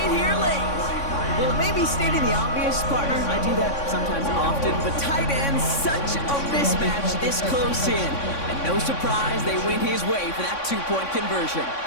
here late. Well, it may be stating the obvious, partner. I do that sometimes often, but tight ends, such a mismatch this close in. And no surprise, they win his way for that 2-point conversion.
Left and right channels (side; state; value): right; late; 3.6 ms